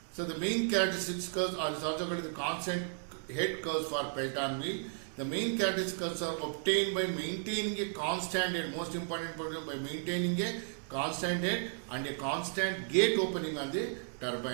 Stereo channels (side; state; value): left; silent; digital silence